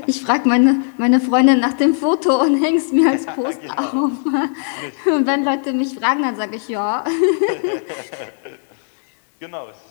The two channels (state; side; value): silent; right; digital silence